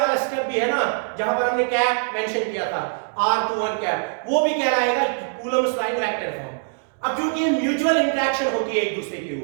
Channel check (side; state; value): left; silent; digital silence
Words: स्टेप भी है ना, जहां पर हमने कैप मेंशन किया था R21 कैप, वो भी कह रहा है Coulomb's law in vector form. अब क्योंकि ये म्यूचुअल इंटरेक्शन होती है एक दूसरे के